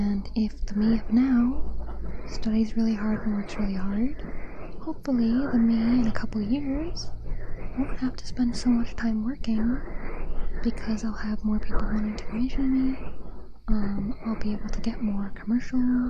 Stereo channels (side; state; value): both; identical; correlation 1.00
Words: if the me of now studies really hard and works really hard, hopefully the me in a couple years won't have to spend so much time working because I'll have more people wanting to commission me. I'll be able to get more commercial